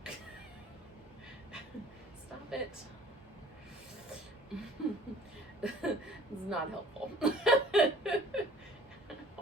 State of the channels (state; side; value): normal; both; correlation 0.51